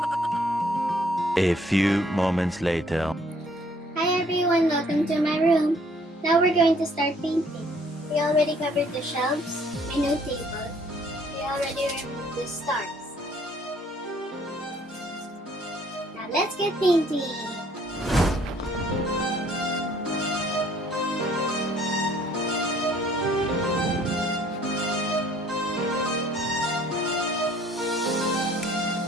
A few moments later. Hi everyone, welcome to my room. Now we're going to start painting. We already covered the shelves, my new table. We already removed the stars. Now let's get painting.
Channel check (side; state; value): both; normal; correlation 0.60